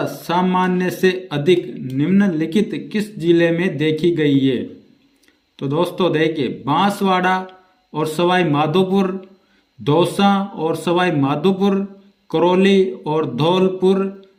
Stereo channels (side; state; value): both; identical; correlation 1.00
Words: सामान्य से अधिक निम्नलिखित किस जिले में देखी गई है? तो दोस्तों देखिए, बांसवाड़ा और सवाई माधोपुर, दौसा और सवाई माधोपुर, करौली और धौलपुर,